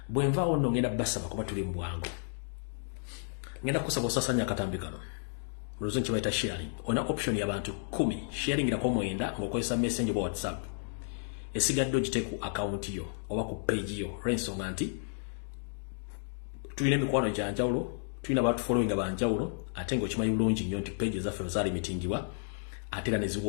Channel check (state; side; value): silent; right; digital silence